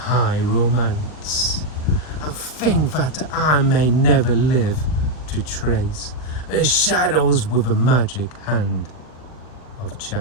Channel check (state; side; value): late; right; 40 ms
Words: romance, and think that I may never live to trace the shadows with the magic hand of